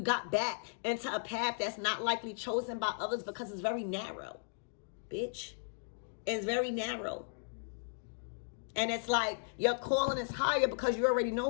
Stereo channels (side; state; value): right; silent; digital silence